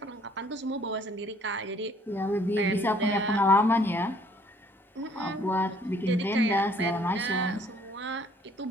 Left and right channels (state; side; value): normal; both; correlation 0.60